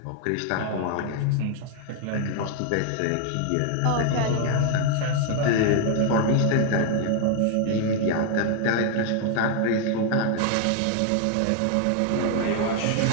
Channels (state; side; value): different; both; correlation 0.01